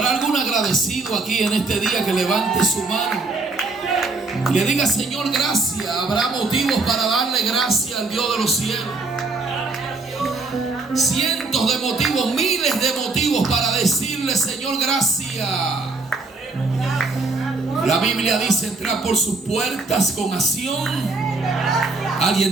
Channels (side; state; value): left; quieter; 3.5 dB